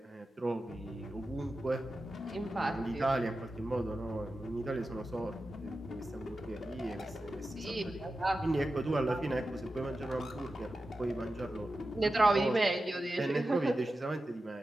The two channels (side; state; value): both; normal; correlation 0.92